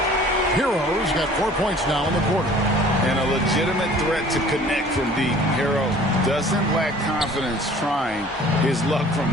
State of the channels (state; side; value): normal; both; correlation 0.50